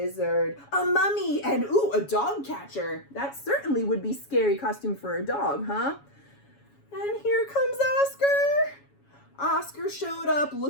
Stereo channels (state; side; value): late; right; 7.2 ms